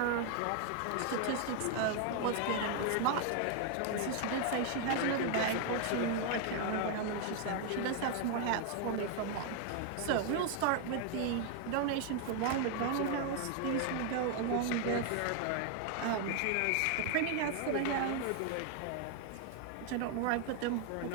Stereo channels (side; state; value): both; different; correlation 0.00